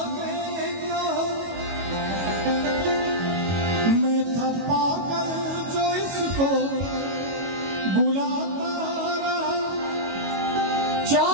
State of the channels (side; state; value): left; late; 22 ms